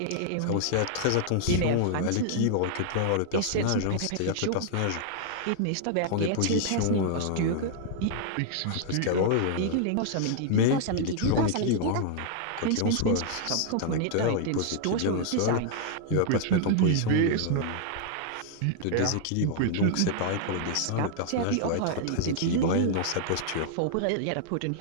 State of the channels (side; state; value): both; different; correlation 0.00